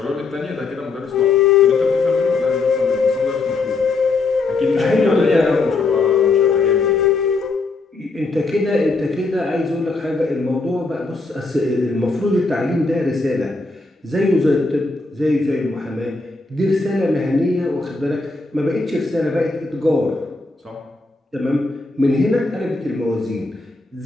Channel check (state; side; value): quieter; right; 3.6 dB